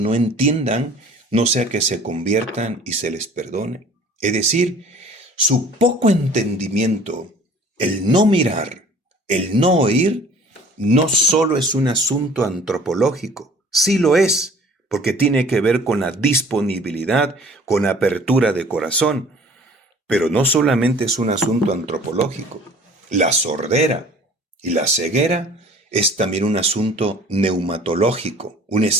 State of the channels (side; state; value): both; normal; correlation 0.50